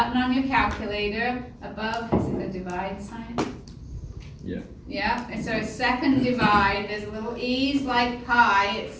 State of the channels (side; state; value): both; identical; correlation 1.00